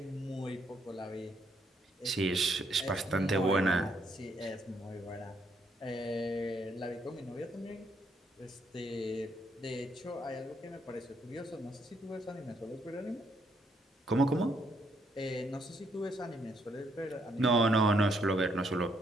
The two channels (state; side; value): normal; both; correlation 0.73